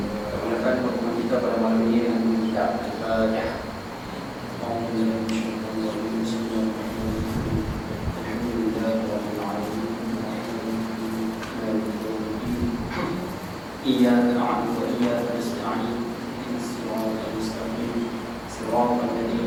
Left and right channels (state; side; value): identical; both; correlation 1.00